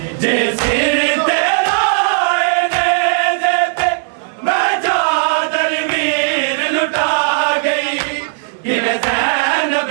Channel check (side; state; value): left; silent; digital silence